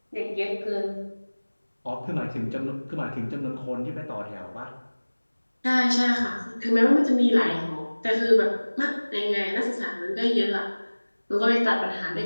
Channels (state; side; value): inverted; both; correlation -1.00